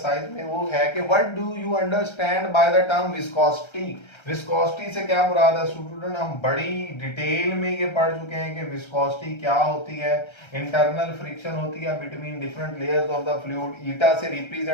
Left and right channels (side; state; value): right; late; 1.3 ms